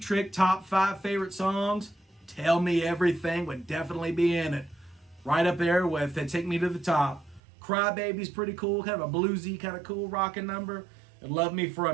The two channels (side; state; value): left; drops out; at 7.4 s